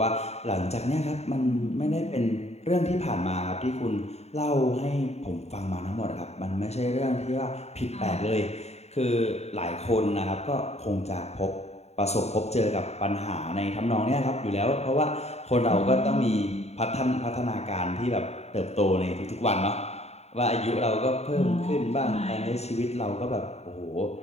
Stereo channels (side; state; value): right; late; 0.31 ms